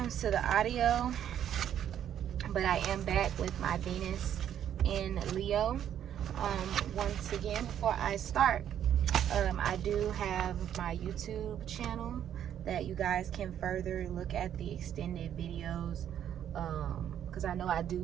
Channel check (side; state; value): left; quieter; 10.0 dB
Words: to the audio. But I am back with my Venus in Leo. Once again, before I start, I do have my YouTube channel that you guys can further look at the extended videos. Because I know I